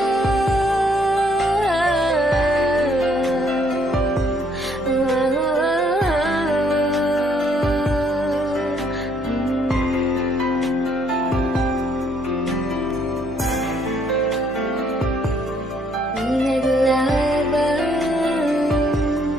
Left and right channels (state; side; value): normal; both; correlation 0.67